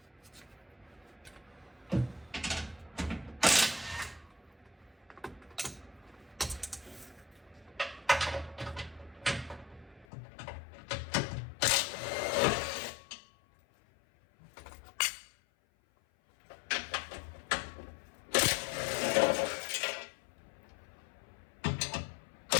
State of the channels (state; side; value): drops out; right; at 10.1 s